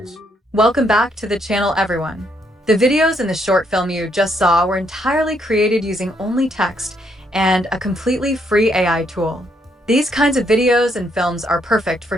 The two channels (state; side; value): normal; both; correlation 0.73